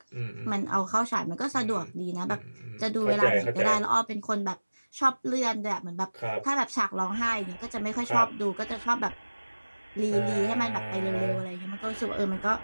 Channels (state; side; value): inverted; both; correlation -1.00